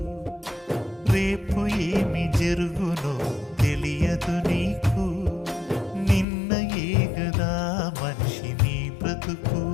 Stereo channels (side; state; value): right; drops out; at 6.2 s